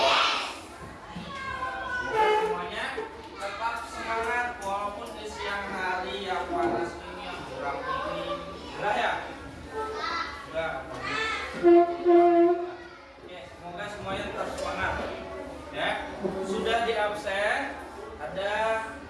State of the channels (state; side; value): identical; both; correlation 1.00